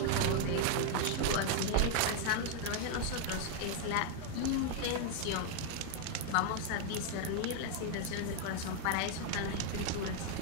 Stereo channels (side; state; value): both; different; correlation 0.00